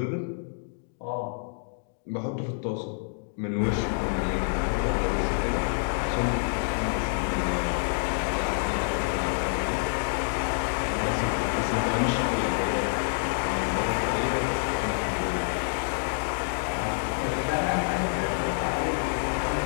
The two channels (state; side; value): silent; right; digital silence